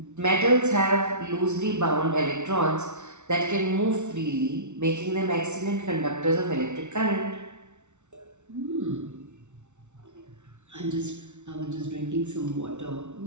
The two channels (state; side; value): late; left; 0.83 ms